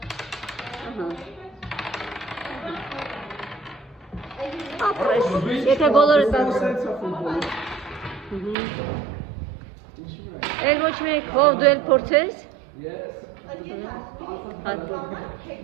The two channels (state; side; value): drops out; left; at 8.6 s